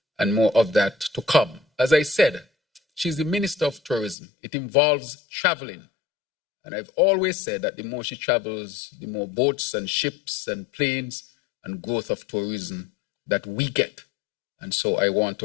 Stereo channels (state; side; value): drops out; right; at 4.2 s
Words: and more of that to come. As I said, she's the Minister of Tourism. It involves traveling. And I've always said that the more she travels, the more boats and ships and planes and growth of tourism that we get. And so I want